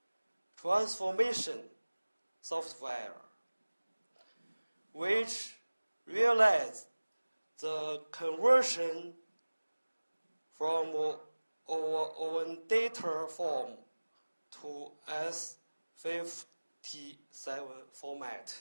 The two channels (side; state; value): both; inverted; correlation -1.00